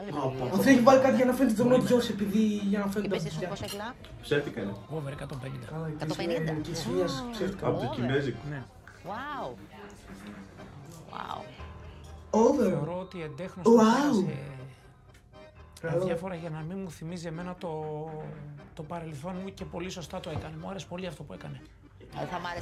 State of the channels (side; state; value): both; identical; correlation 1.00